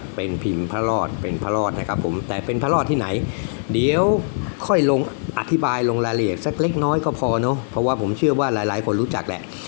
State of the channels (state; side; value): silent; right; digital silence